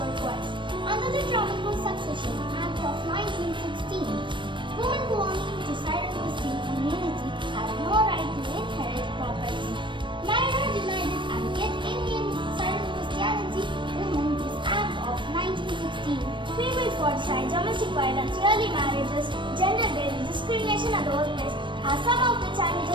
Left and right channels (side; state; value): left; late; 0.23 ms